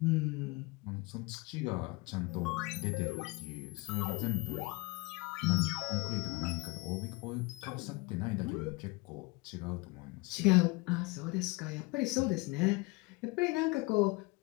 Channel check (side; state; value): right; quieter; 24.9 dB